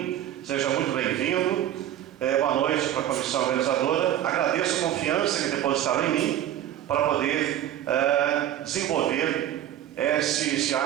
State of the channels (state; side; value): quieter; left; 11.7 dB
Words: seja muito bem-vindo. Boa noite para a comissão organizadora. Agradeço a confiança que depositaram em mim para poder desenvolver esse